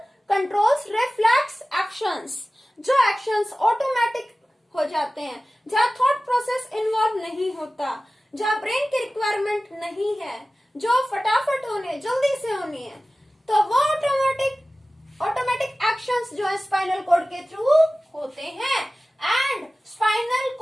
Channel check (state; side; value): normal; both; correlation 0.97